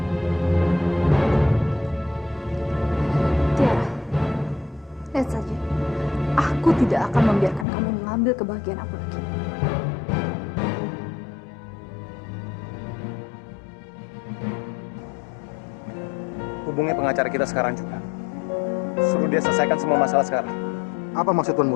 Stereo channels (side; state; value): right; drops out; at 7.7 s